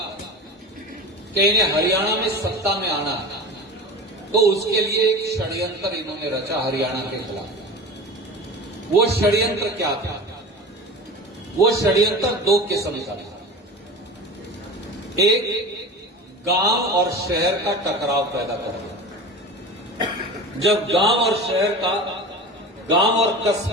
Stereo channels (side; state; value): both; normal; correlation 0.33